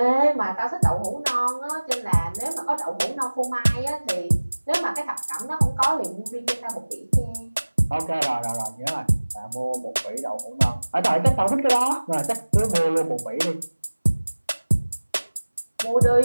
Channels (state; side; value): inverted; both; correlation -1.00